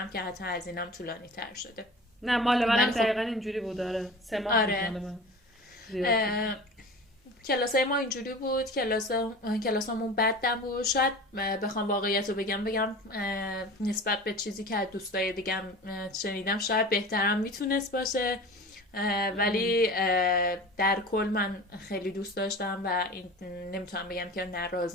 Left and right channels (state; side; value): normal; both; correlation 0.37